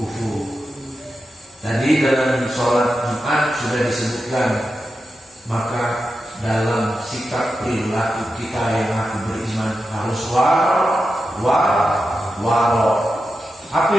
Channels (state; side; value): normal; both; correlation 0.90